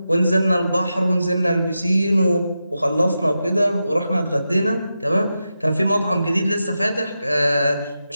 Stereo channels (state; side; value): inverted; both; correlation -0.89